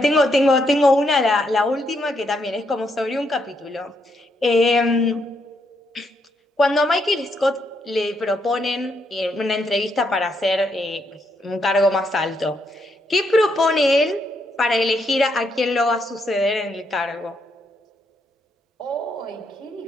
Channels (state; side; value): normal; both; correlation 0.77